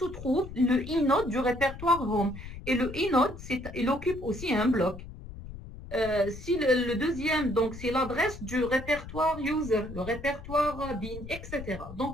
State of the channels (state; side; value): noise; left; rumble, 12 dB below the sound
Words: trouve le inode du répertoire home. Et le inode, il occupe aussi un bloc. Si le deuxième, donc c'est l'adresse du répertoire user, le répertoire bin, etc.